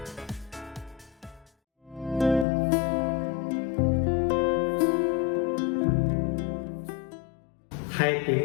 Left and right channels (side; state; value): right; drops out; at 2.5 s